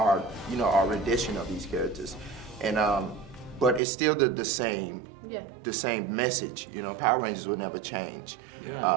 our rendition of these characters, and but it's still the same, the same message, Power Rangers will never change.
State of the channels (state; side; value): drops out; left; at 3.8 s